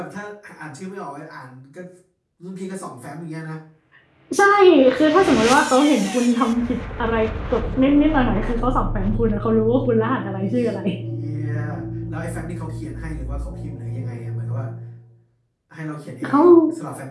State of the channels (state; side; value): identical; both; correlation 1.00